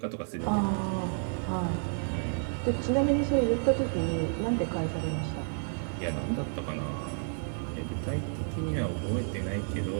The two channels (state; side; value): silent; left; 57 dB below the other